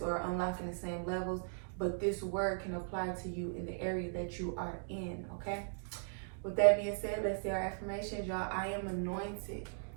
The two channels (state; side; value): silent; left; digital silence